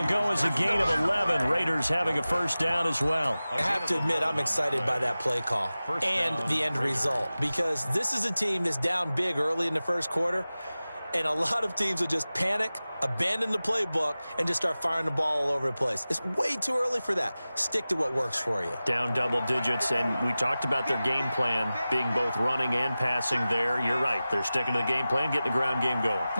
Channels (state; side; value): inverted; both; correlation -0.96